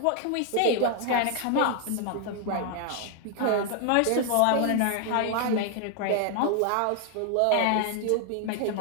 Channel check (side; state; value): both; different; correlation 0.00